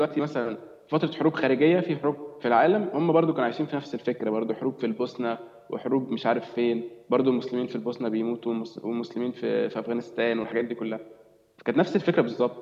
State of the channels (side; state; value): both; identical; correlation 1.00